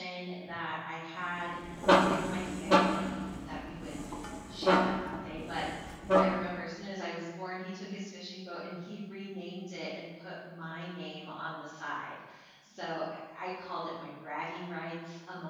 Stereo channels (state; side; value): identical; both; correlation 1.00